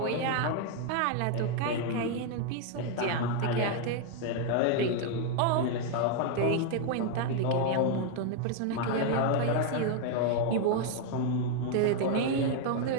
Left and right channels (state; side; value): different; both; correlation 0.01